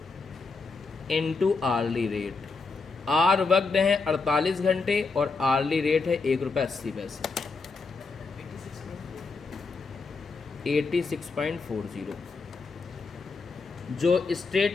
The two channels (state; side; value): quieter; right; 4.2 dB